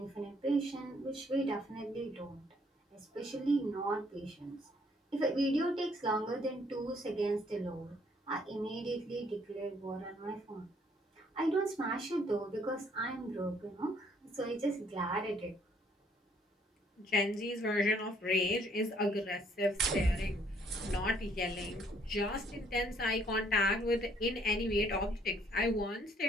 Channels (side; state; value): both; normal; correlation 0.65